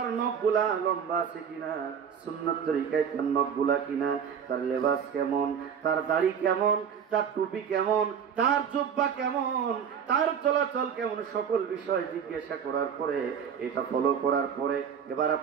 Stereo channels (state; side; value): quieter; left; 7.6 dB